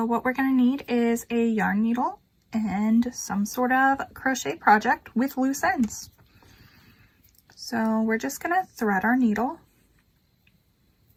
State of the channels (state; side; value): identical; both; correlation 1.00